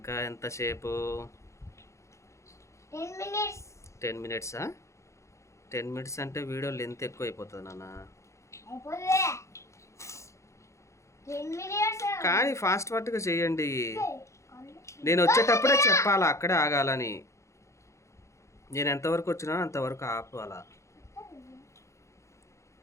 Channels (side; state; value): right; late; 0.14 ms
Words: ఎంతసేపు? 10 మినిట్సా? 10 మినిట్స్ అంటే వీడియో లెంత్ ఎక్కువ అయిపోతుంది నాన్న. కానీ ఫాస్ట్గా చేయండి. నేను వచ్చేటప్పుడే చెప్పాలా, అక్కడే ఆగాలని. నేను ఎంతవరకు వచ్చినా అంతవరకు ఆపాలా.